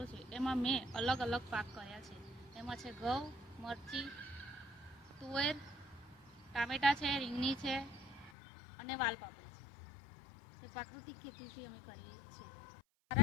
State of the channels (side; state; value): right; drops out; at 8.3 s